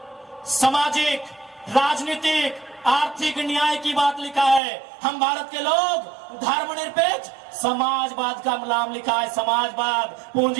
सामाजिक, राजनीतिक, आर्थिक न्याय की बात लिखा है। हम भारत के लोग धर्मनिरपेक्ष समाजवाद का नाम लिखा है, समाजवाद,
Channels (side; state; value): left; drops out; at 4.6 s